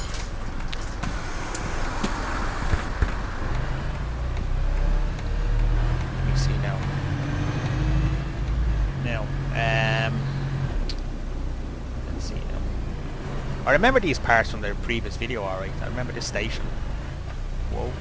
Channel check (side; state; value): both; identical; correlation 1.00